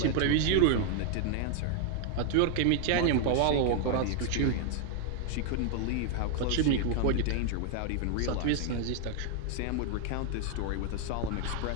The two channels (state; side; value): different; both; correlation 0.00